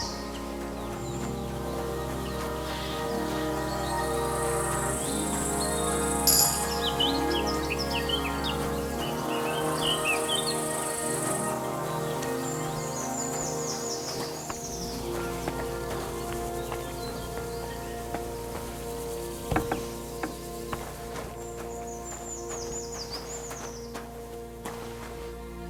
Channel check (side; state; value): both; identical; correlation 1.00